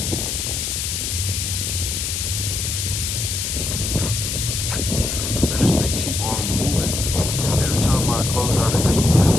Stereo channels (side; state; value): left; noise; hiss, 2 dB below the sound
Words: Man, this thing keep on moving. Every time I close out of